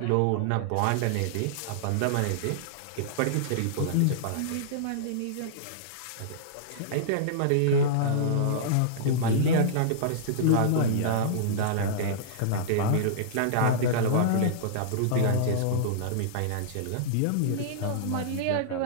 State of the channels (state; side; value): different; both; correlation -0.02